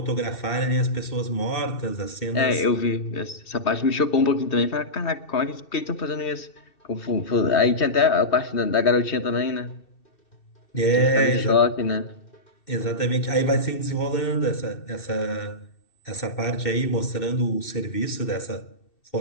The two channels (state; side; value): late; right; 2.6 ms